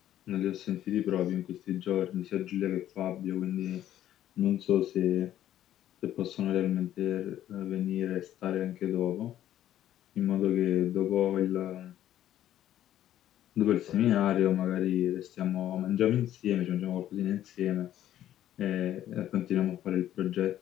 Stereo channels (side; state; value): right; quieter; 12.1 dB